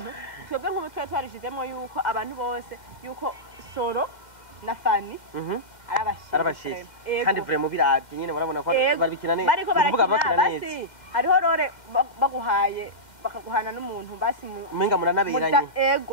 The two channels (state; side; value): late; right; 2.1 ms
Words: twebwe nk'ubu twarishizemo yuko abantu bose yuko Soro na Fani arabashije kandi vraiment biravye nyene barabona ko barabikina neza bariko barakina basi hariho rore baguhaye bakaguhana n'umuntu basi umenga muranabiranye